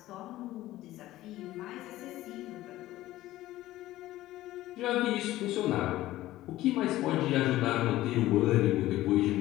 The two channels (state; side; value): quieter; right; 15.8 dB